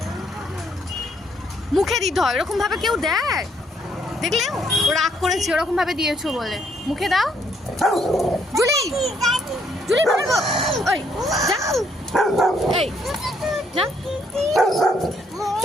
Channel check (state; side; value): normal; both; correlation 0.70